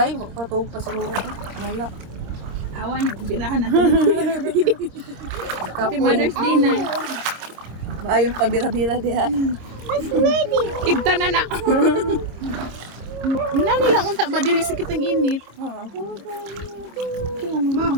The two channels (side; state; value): left; late; 25 ms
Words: patug pa siguro ko. Wala. Awan, birahan natin. Happy Mother's Day na. Maayong pabira-bira diha. Ibta na na. Nani lang unta ba dili sakit ang init.